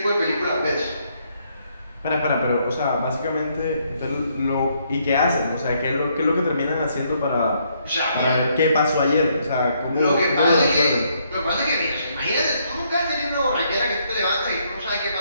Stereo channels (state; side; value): inverted; both; correlation -0.72